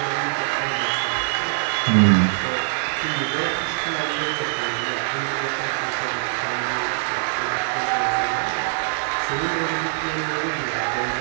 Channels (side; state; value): left; silent; 63 dB below the other